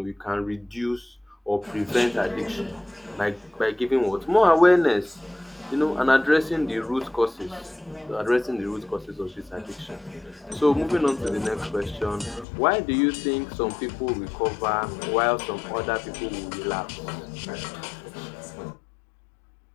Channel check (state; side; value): drops out; right; at 12.5 s